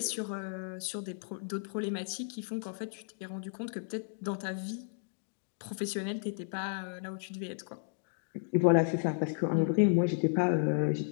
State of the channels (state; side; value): silent; right; digital silence